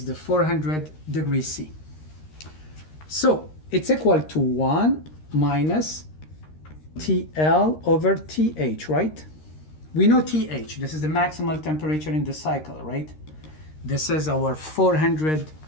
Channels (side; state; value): right; late; 13 ms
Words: the 400 degrees C. So it's equal to 1 minus TL over TH, right? We know TH, this is the maximal temperature in the cycle, right? This is our 400